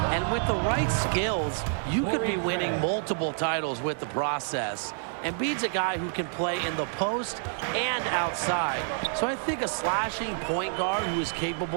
And with the right skills, you could be winning multiple titles with the process. Embiid's a guy who can play in the post and outside. So I think a slashing point guard who is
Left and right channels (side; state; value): left; silent; 59 dB below the other